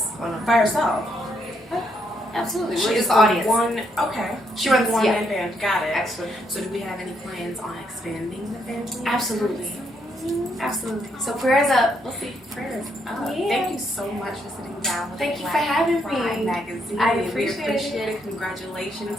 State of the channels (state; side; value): normal; both; correlation 0.75